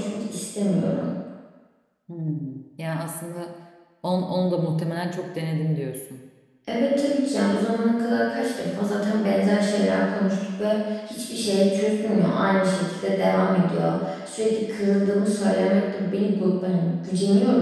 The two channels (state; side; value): identical; both; correlation 1.00